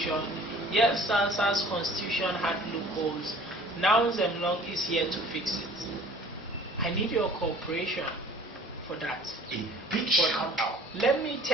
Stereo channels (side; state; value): both; normal; correlation 0.49